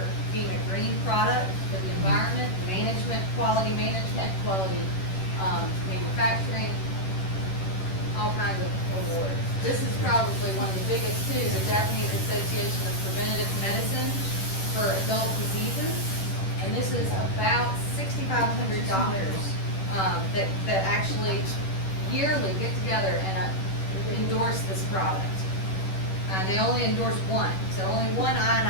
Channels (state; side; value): late; right; 10 ms